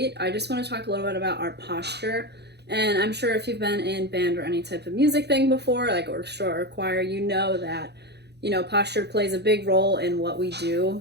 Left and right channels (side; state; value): left; late; 0.49 ms